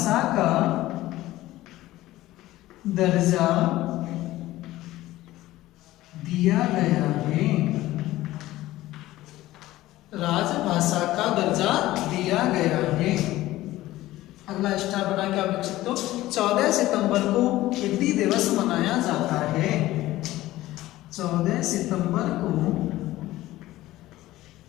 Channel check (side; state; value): right; quieter; 16.3 dB